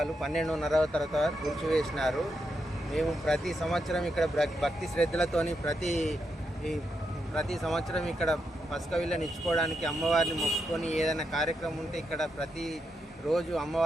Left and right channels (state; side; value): normal; both; correlation 0.83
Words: 12:30 తర్వాత కూల్చివేసినారు. మేము ప్రతి సంవత్సరం ఇక్కడ భక్తి శ్రద్ధలతోని ప్రతి సంవత్సరం ఇక్కడ పసుక విళ్ళని ఇచ్చుకోవడానికి అమ్మవారిని మొక్కుకొని ఏదైనా కార్యక్రమం ఉంటే ఇక్కడ ప్రతి రోజు